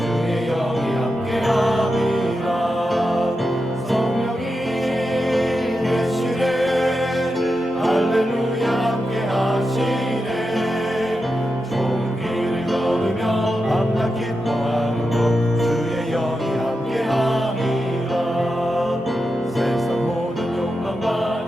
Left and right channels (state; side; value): normal; both; correlation 0.89